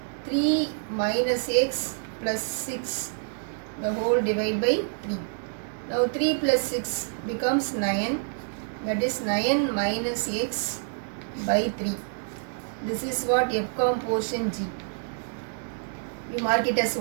3 minus x plus 6 the whole divide by 3. Now 3 plus 6 becomes 9, that is 9 minus x by 3. This is what F composition G. You mark it as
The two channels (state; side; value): silent; left; digital silence